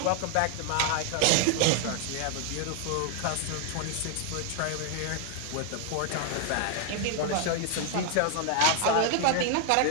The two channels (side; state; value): both; different; correlation 0.00